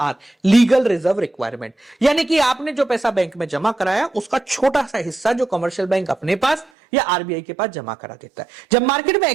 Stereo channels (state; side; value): drops out; left; at 6.7 s